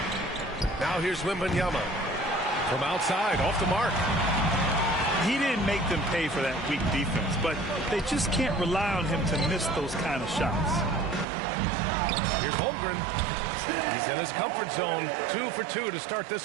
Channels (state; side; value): drops out; left; at 11.2 s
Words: Now here's Wembanyama. From outside, off the mark. He didn't make them pay for that weak defense, but they just can't rely on him to miss those kind of shots. Here's Holmgren. He's in his comfort zone. 2 for 2 to start